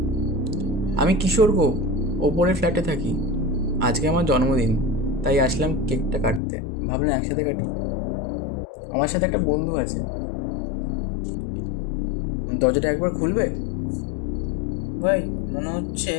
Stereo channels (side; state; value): right; drops out; at 6.4 s